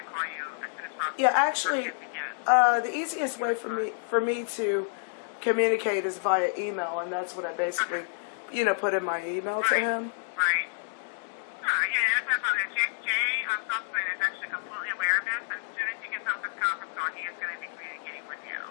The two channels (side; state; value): right; silent; digital silence